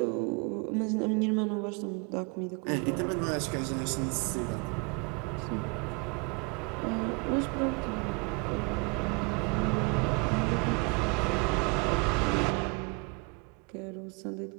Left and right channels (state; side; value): quieter; left; 30.7 dB